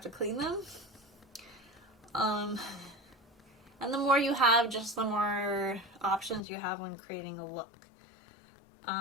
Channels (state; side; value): drops out; right; at 6.4 s